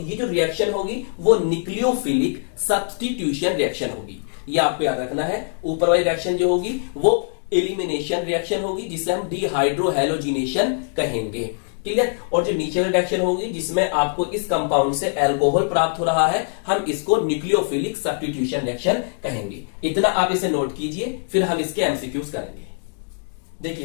ये जो रिएक्शन होगी वो न्यूक्लियोफिलिक सब्स्टिट्यूशन रिएक्शन होगी। ये आपको याद रखना है। ऊपर वाली रिएक्शन जो होगी वो एलिमिनेशन रिएक्शन होगी जिसे हम डिहाइड्रोहैलोजिनेशन कहेंगे। क्लियर। और जो नीचे वाली रिएक्शन होगी जिसमें आपको इस कंपाउंड से एल्कोहल प्राप्त हो रहा है, हम इसको न्यूक्लियोफिलिक सब्स्टिट्यूशन रिएक्शन कहेंगे। इतना आप इसे नोट कीजिए, फिर हम इसके एमसीक्यूज करेंगे।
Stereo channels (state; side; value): silent; right; digital silence